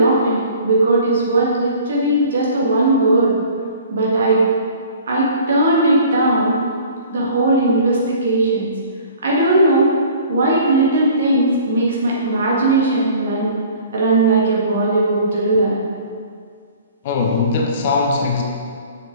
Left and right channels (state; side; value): inverted; both; correlation -0.49